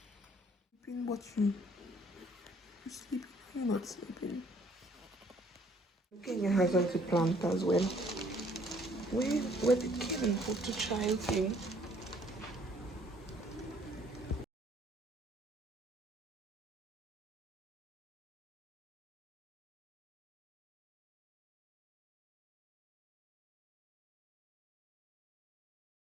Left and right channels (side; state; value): both; normal; correlation 0.61